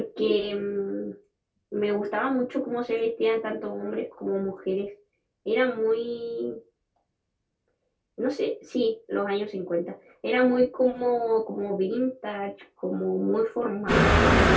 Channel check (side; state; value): both; identical; correlation 1.00